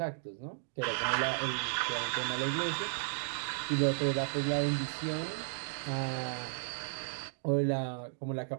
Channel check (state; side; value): silent; left; digital silence